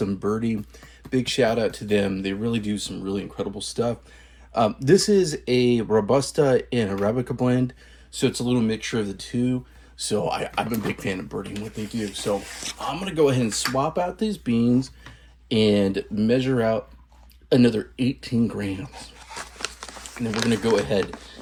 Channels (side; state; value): both; identical; correlation 1.00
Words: Birdie. Big shout out to them. They really do some really incredible stuff. This is a Robusta and Arabica blend, so it's a little mixture of the two. So I'm a big fan of birding what they do. So I'm going to go ahead and swap out these beans and measure out another 18 grams. And then we're going to go ahead